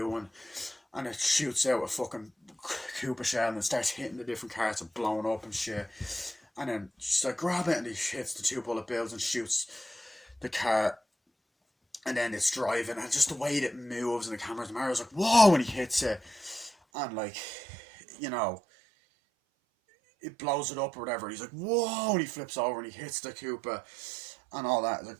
one, and it shoots out a fucking Koopa shell, and it starts hitting the different carts and blowing up and shit. And then she's like, grab it, and he hits the 2 bullet bills and shoots the car. And then it's driving, and just the way that it moves and the cameras, Mario's like, whoa, when he hits it. And like, you know, it blows it up or whatever. He's like, whoa, and he flips over and he hits the Koopa and all that. It's like,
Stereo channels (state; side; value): drops out; left; at 16.8 s